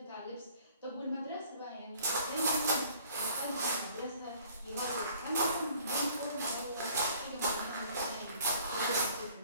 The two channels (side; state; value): both; inverted; correlation -0.56